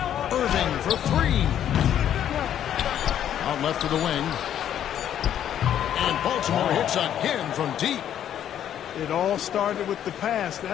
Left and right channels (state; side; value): quieter; right; 10.3 dB